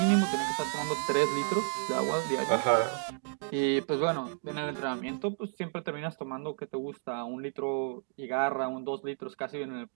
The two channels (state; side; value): silent; left; 57 dB below the other